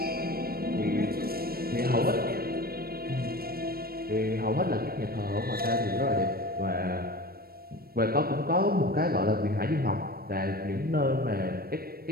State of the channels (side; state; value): left; late; 0.44 ms